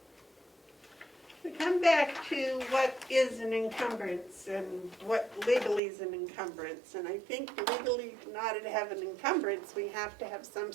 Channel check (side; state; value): left; drops out; at 5.8 s